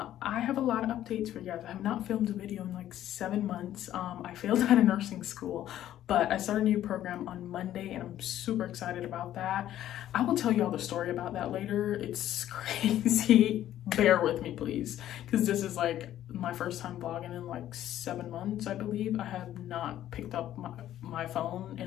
have a lot of updates for you guys. I have not filmed a video in like 7 months. I failed out of nursing school, but I started a new program on Monday and I'm super excited about that. I will tell you all the story about that later. It's crazy. Bear with me, please, because this is like my first time vlogging in like 7 months, I believe. I have not picked up my phone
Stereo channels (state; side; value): quieter; right; 12.3 dB